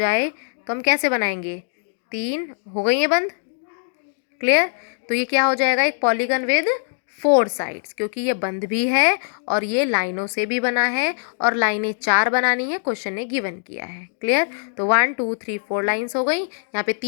तो हम कैसे बनाएंगे, 3 हो गई है बंद, क्लियर। तो ये क्या हो जाएगा, एक पॉलीगन विद 4 साइड्स, क्योंकि ये बंद भी है और ये लाइनों से भी बना है और लाइनें 4 बनानी है, क्वेश्चन ने गिवन किया है। क्लियर। तो 1 2 3 4 लाइन्स हो गई। यहाँ पे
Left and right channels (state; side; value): silent; right; digital silence